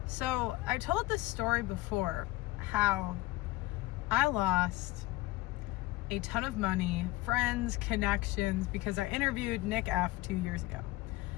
So I told this story before, how I lost a ton of money, friends, connections, because I interviewed Nick F. 2 years ago.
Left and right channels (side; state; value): right; quieter; 19.4 dB